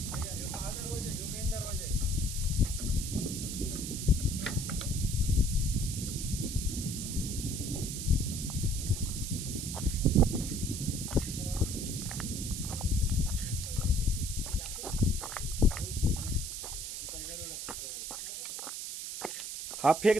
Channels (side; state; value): right; noise; hiss, 6 dB below the sound